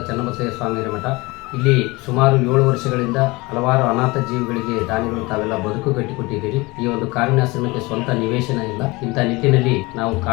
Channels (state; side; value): quieter; right; 23.4 dB